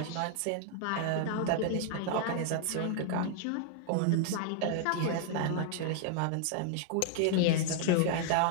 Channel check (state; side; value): different; both; correlation 0.00